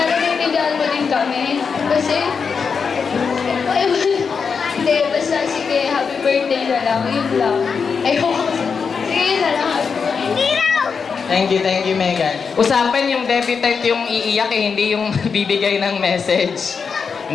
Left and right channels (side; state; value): right; quieter; 5.7 dB